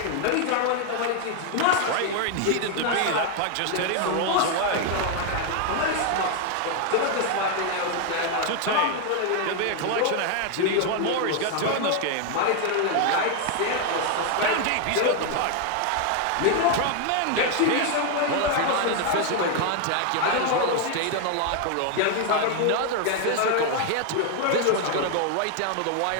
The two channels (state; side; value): different; both; correlation 0.00